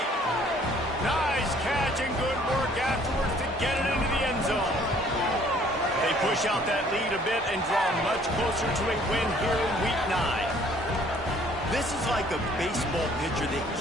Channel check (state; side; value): normal; both; correlation 0.58